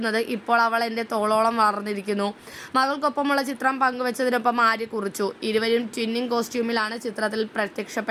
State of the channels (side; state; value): both; identical; correlation 1.00